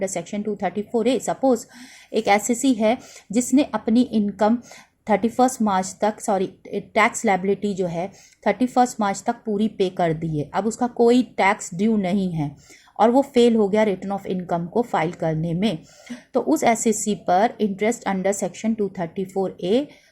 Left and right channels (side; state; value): both; identical; correlation 1.00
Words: सेक्शन 234A. सपोज एक एसएससी है जिसने अपनी इनकम 31 मार्च तक टैक्स लायबिलिटी जो है 31 मार्च तक पूरी पे कर दी है. अब उसका कोई टैक्स ड्यू नहीं है और वो फेल हो गया रिटर्न ऑफ इनकम को फाइल करने में, तो उस एसएससी पर interest under section 234A